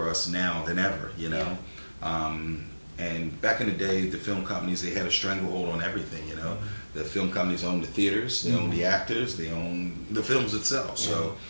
us now than ever, you know. And back in the day, the film companies, they had a stranglehold on everything, you know. The film companies owned the theaters, they owned the actors, they owned the films itself. So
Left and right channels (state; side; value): inverted; both; correlation -1.00